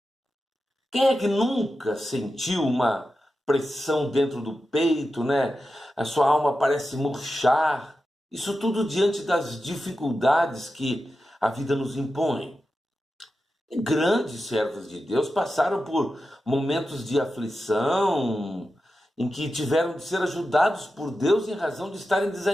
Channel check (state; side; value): normal; both; correlation 0.91